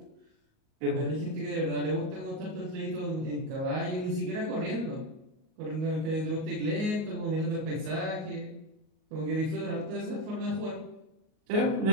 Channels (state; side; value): late; left; 38 ms